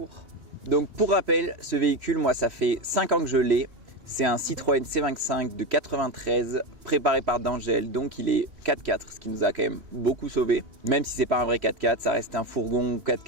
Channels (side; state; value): left; late; 3.1 ms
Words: Donc pour rappel, ce véhicule, moi ça fait 5 ans que je l'ai. C'est un Citroën C25 de 93 préparé par D'Angèle, donc il est 4x4, ce qui nous a quand même beaucoup sauvé. Même si c'est pas un vrai 4x4, ça reste un fourgon